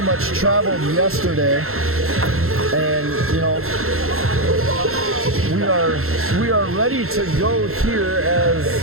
much traveled yesterday, and we are ready to go here as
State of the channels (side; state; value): left; late; 0.62 ms